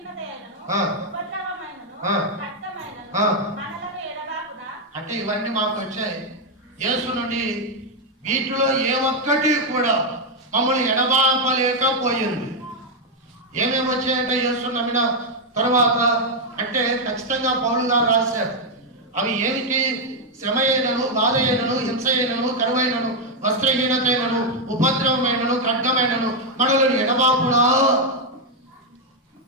ఉపద్రవమైనను రక్తమైనను మనలను ఎడబాకునా. అంటే ఇవన్నీ మాకు వచ్చాయి యేసు నుండి. వీటిలో ఏ ఒక్కటి కూడా మమ్మల్ని ఎడబాపలేకపోయింది. ఏమేమి వచ్చాయంటే యేసు నమ్మిన తర్వాత అంటే ఖచ్చితంగా పౌలు గారు రాశారు. అవి ఏమిటి? శ్రమ అయినను, బాధ అయినను, హింస అయినను, కరువైనను, వస్త్రహీనత అయినను, ఉపద్రవమైనను, ఖడ్గమైనను, మనలను ఎడబాపునా.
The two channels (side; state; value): both; normal; correlation 0.01